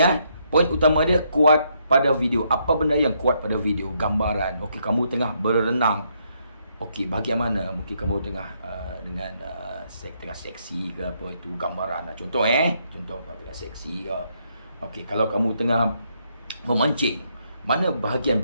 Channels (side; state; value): both; inverted; correlation -0.74